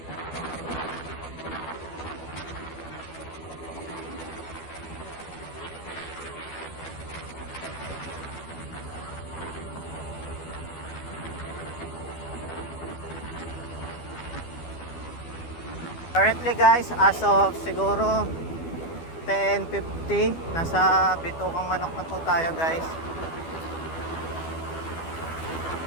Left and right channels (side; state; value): right; late; 12 ms